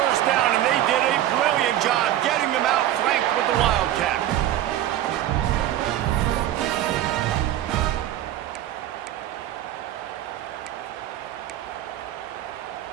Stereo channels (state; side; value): quieter; left; 12.7 dB